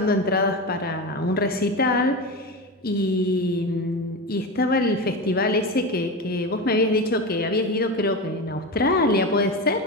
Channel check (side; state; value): both; normal; correlation 0.22